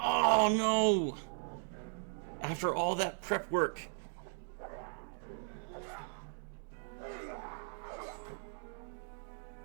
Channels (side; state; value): left; silent; 53 dB below the other